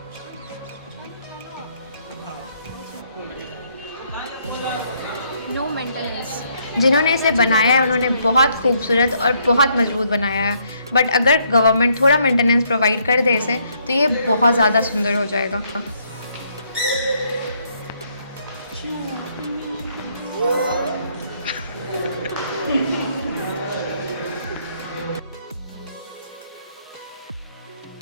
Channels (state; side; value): inverted; both; correlation -0.70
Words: No maintenance. जिन्होंने इसे बनाया है उन्होंने बहुत खूबसूरत और बहुत मजबूत बनाया है, बट अगर गवर्नमेंट थोड़ा मेंटेनेंस प्रोवाइड कर दे इसे तो ये बहुत ज़्यादा सुंदर हो जाएगा।